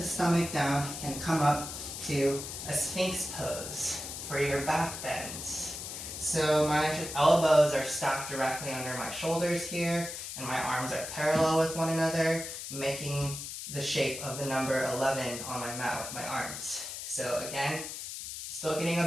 stomach down and come up to a Sphinx pose for your back bends. So my elbows are stacked directly under my shoulders here, and my arms are parallel with one another, making the shape of the number 11 on my mat with my arms. So again, still getting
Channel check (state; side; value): noise; left; hiss, 8 dB below the sound